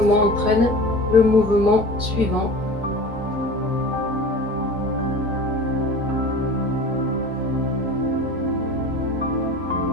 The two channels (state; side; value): normal; both; correlation 0.37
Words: entraîne le mouvement suivant.